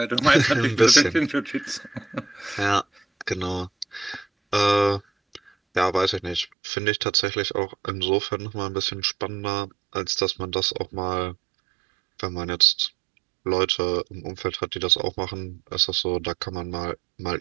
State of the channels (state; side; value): drops out; left; at 6.5 s